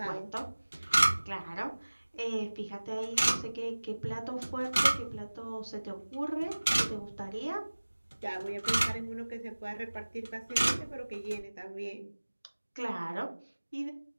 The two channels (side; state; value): both; inverted; correlation -1.00